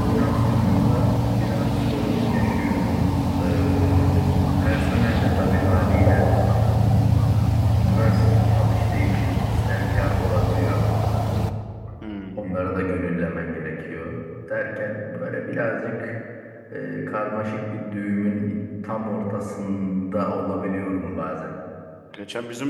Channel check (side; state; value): both; identical; correlation 1.00